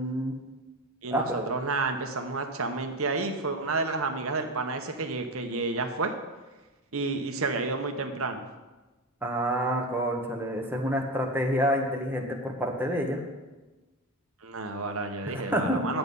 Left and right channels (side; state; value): both; normal; correlation 0.21